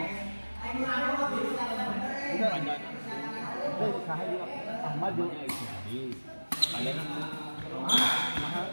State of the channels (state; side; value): inverted; both; correlation -1.00